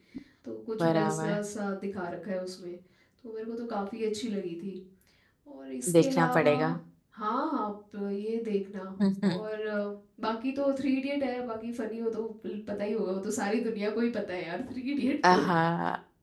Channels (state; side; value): identical; both; correlation 1.00